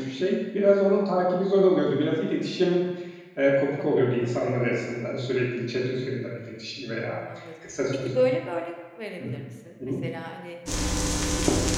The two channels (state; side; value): identical; both; correlation 1.00